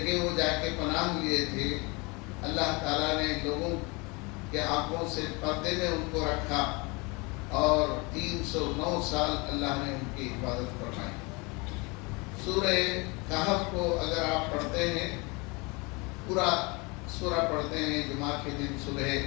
وہ جا کے پناہ لیے تھے، اللہ تعالیٰ نے لوگوں کے آنکھوں سے پردے میں ان کو رکھا اور 309 سال اللہ نے ان کی حفاظت فرمائی۔ سورہ کہف کو اگر آپ پڑھتے ہیں، پورا سورہ پڑھتے ہیں، جمعہ کے دن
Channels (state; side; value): quieter; right; 27.7 dB